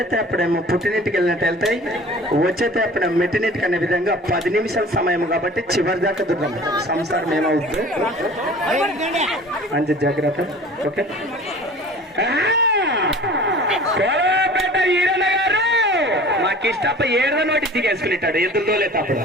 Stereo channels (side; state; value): both; normal; correlation 0.44